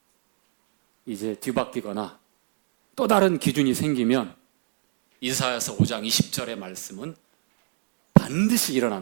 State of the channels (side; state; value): left; silent; digital silence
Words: 이제 뒤바뀌거나 또 다른 기준이 생기면 이사야서 5장 20절의 말씀은 반드시